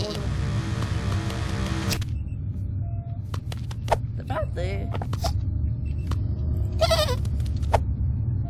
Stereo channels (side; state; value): both; identical; correlation 1.00